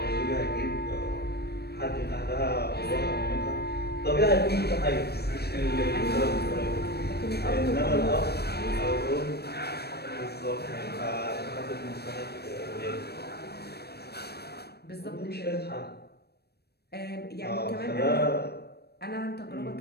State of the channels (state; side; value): late; right; 0.47 ms